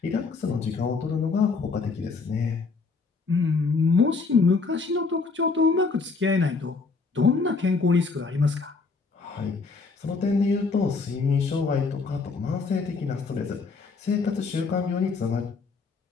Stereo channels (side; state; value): right; quieter; 4.4 dB